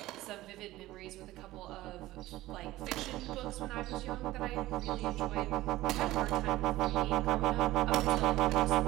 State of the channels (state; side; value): quieter; left; 16.7 dB